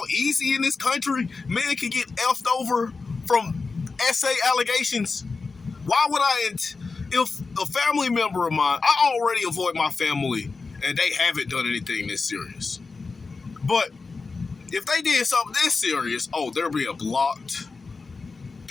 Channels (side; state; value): right; quieter; 4.3 dB